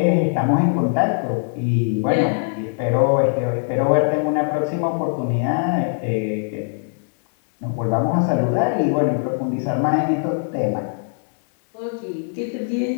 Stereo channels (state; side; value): silent; right; digital silence